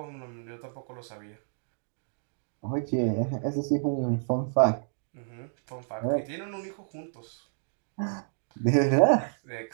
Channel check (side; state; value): left; silent; digital silence